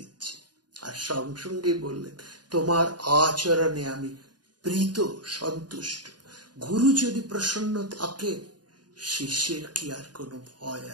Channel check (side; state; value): left; late; 0.70 ms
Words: আর সঙ্গে সঙ্গেই বললেন তোমার আচরণে আমি প্রীত, সন্তুষ্ট। গুরু যদি প্রসন্ন থাকে শিষ্যের কি আর কোনো ভয়